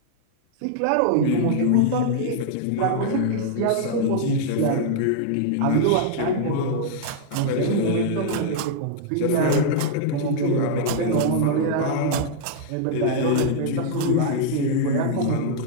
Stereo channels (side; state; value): both; different; correlation -0.01